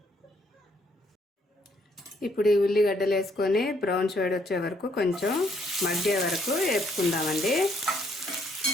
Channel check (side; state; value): both; normal; correlation 0.69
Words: ఇప్పుడు ఈ ఉల్లిగడ్డలు వేసుకొని బ్రౌన్ షేడ్ వచ్చే వరకు, కొంచెం మగ్గే వరకు వేపుకుందామండి.